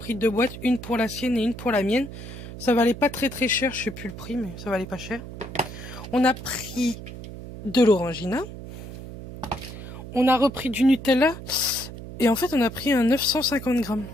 2 boîtes. Une pour la sienne et une pour la mienne. Ça valait pas très très cher. Je sais plus le prix, mais ça valait pas cher. On a pris de l'orangina. On a repris du Nutella. Et en fait, on a pris un 950 grammes.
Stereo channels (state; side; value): noise; right; hum, 12 dB below the sound